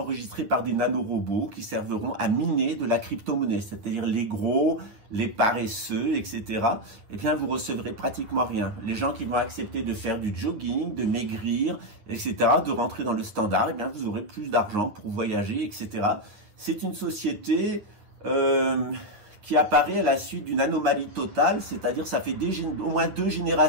par des nanorobots qui serviront à miner de la crypto-monnaie, c'est-à-dire les gros, les paresseux, etc. Vous recevrez pratiquement rien. Les gens qui vont accepter de faire du jogging, de maigrir, etc., de rentrer dans le standard, vous aurez plus d'argent pour voyager, etc. C'est une société qui apparaît à la suite d'une anomalie totale, c'est-à-dire ça fait au moins 2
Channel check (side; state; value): left; late; 9.8 ms